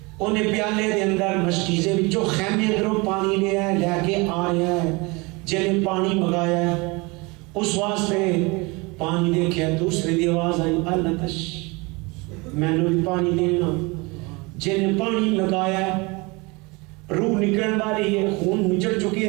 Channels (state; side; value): quieter; left; 26.4 dB